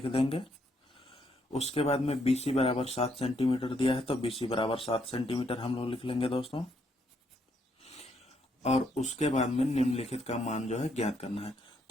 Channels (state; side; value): normal; both; correlation 0.74